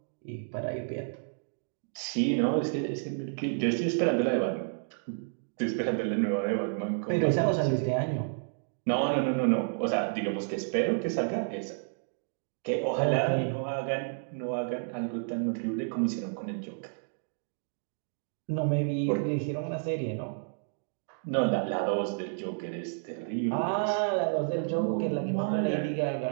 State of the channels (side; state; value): left; silent; digital silence